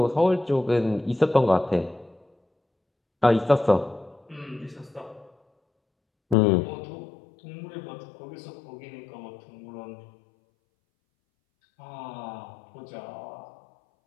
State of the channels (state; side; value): drops out; right; at 6.4 s